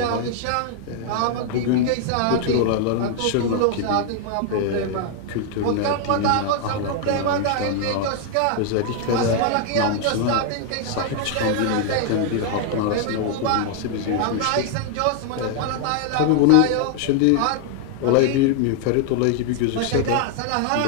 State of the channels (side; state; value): both; different; correlation 0.00